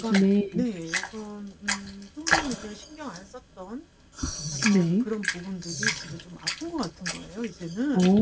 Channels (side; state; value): both; identical; correlation 1.00